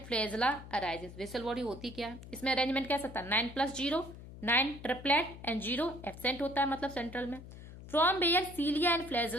flagella arises, basal body होती क्या है, इसमें अरेंजमेंट कैसा था, 9+0, 9 ट्रिपलेट एंड 0 एब्सेंट होता है, मतलब सेंट्रल में। From where cilia and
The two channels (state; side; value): noise; left; hum, 15 dB below the sound